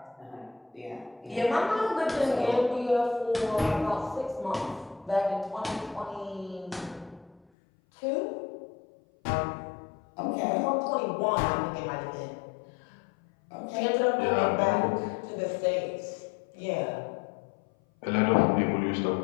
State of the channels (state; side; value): drops out; right; at 7.4 s